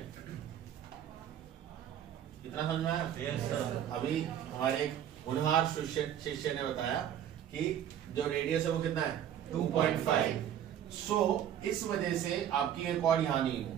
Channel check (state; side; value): quieter; left; 10.1 dB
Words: इतना समझ में आया? Yes sir. अभी हमारे एक होनहार शिष्य ने बताया कि जो रेडियस है वो कितना है? 2.5। सो इस वजह से आपकी ये कॉर्ड यहां नहीं है।